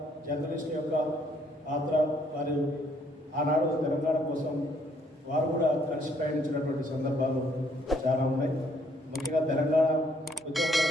జర్నలిస్టు యొక్క పాత్ర, వారు ఆనాడు తెలంగాణ కోసం వారు కూడా కలిసి ప్రయాణించినటువంటి సందర్భాలు చాలా ఉన్నాయి. ముఖ్యంగా తెలంగాణ ఉద్యమంలో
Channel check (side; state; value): both; normal; correlation 0.67